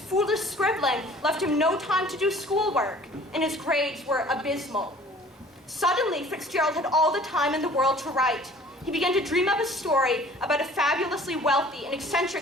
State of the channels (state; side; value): normal; both; correlation 0.50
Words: scribbling left him no time to do schoolwork, and his grades were abysmal. Suddenly, Fitzgerald had all the time in the world to write. He began to dream up a story about a fabulously wealthy and